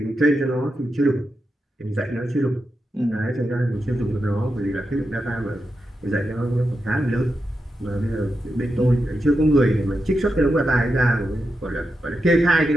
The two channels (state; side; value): normal; both; correlation 0.87